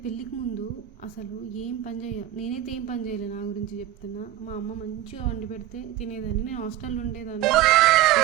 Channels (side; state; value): left; quieter; 13.1 dB